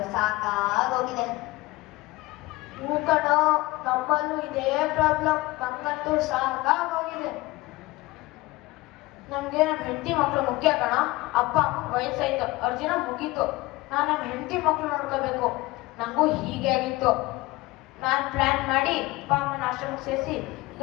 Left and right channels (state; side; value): quieter; right; 20.6 dB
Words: ಸಾಕಾಗೋಗಿದೆ. ಹೂ ಕಣೋ, ನಮ್ಮಲ್ಲೂ ಇದೇ ಪ್ರಾಬ್ಲಮ್. ನಂಗಂತೂ ಸಾಕಾಗೋಗಿದೆ. ನಮ್ಗೆ ನಮ್ಮ ಹೆಂಡತಿ ಮಕ್ಳು ಮುಖ್ಯ ಕಣ. ಅಪ್ಪ ಅಮ್ಮ ವಯಸ್ಸಾಯ್ತು, ಅವ್ರ ಜನ ಮುಗೀತು. ನಾನು ನಮ್ಮ ಹೆಂಡತಿ ಮಕ್ಳು ನೋಡ್ಕೋಬೇಕು. ನಂಗೂ ಹೀಗೆ ಆಗಿತ್ತು. ನಾನು ಪ್ಲಾನ್ ಮಾಡಿ ಅಪ್ಪ ಅಮ್ಮನ ಆಶ್ರಮಕ್ಕೆ ಸೇರಿಸಿ ಈಗ